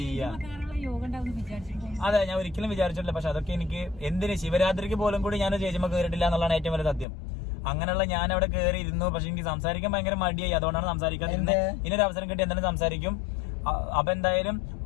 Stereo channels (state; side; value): drops out; right; at 7.1 s